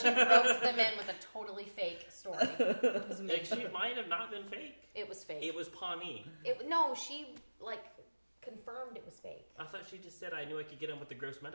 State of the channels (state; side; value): inverted; both; correlation -1.00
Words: roped them in with a totally fake story. It was amazing. Actually, it might have not been fake. It was fake. It was Pawnee. No, she like confirmed it was fake. I thought she just said I knew I could get him with the gross